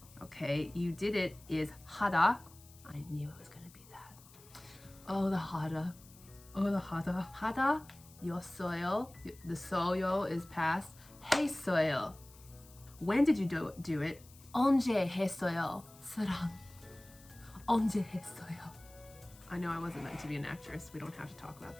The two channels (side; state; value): left; noise; hiss, 23 dB below the sound